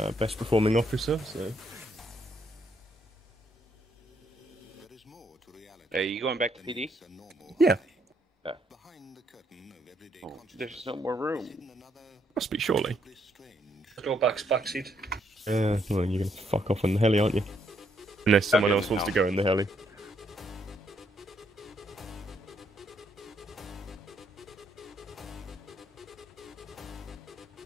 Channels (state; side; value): normal; both; correlation 0.73